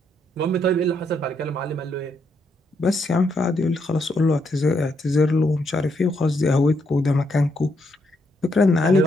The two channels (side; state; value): both; normal; correlation 0.77